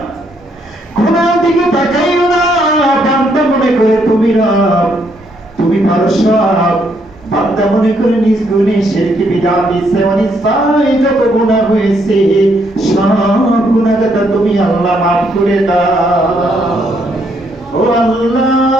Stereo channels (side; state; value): both; normal; correlation 0.73